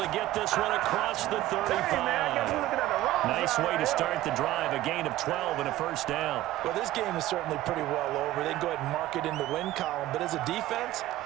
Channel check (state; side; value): quieter; left; 15.3 dB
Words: get this one across the 35. Nice way to start the drive, a gain of 12 and a first down. Well, this game is certainly pretty well over. They can go ahead and mark it in the win column. But as a defense,